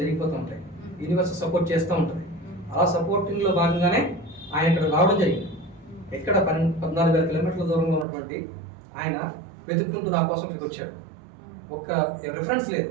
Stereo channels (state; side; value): drops out; left; at 8.1 s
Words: జరిగిపోతూ ఉంటాయి. యూనివర్స్ సపోర్ట్ చేస్తూ ఉంటుంది. అలా సపోర్టింగ్లో భాగంగానే ఆయన ఇక్కడ రావడం జరిగింది. ఎక్కడ 14,000 కిలోమీటర్ల దూరంలో ఉన్నటువంటి ఆయన వెతుక్కుంటూ నా కోసం ఇక్కడికి వచ్చాడు. ఒక్క రెఫరెన్స్ లేదు,